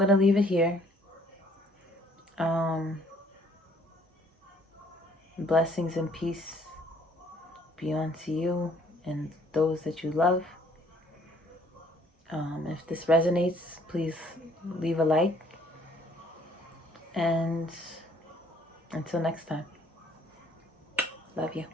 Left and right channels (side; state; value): both; normal; correlation 0.61